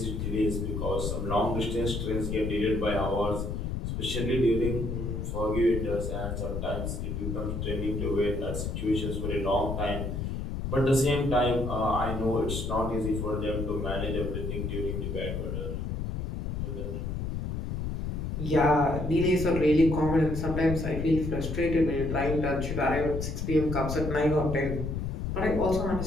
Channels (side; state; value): left; noise; rumble, 3 dB below the sound